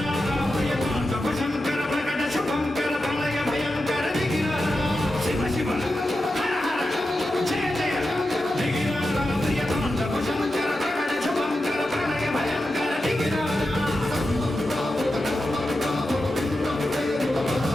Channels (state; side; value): normal; both; correlation 0.90